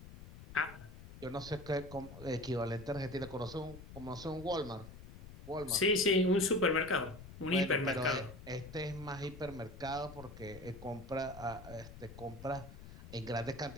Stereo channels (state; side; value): noise; left; rumble, 15 dB below the sound